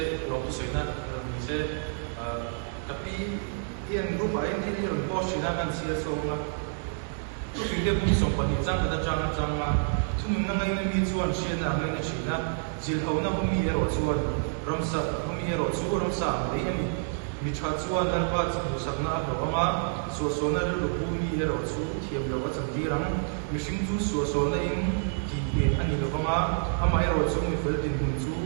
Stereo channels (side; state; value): left; silent; digital silence